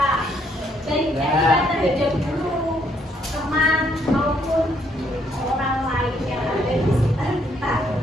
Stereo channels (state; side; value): normal; both; correlation 0.70